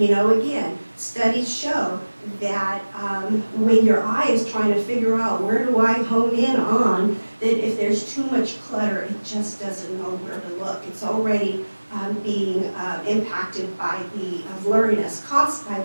studies show that when your eye is trying to figure out where do I hone in on, that if there's too much clutter, it just doesn't know where to look. It's already being impacted by the blurriness caused by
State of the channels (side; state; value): both; inverted; correlation -1.00